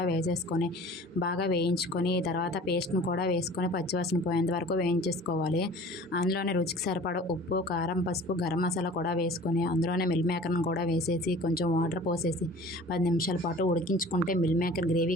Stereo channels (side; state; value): both; normal; correlation 0.45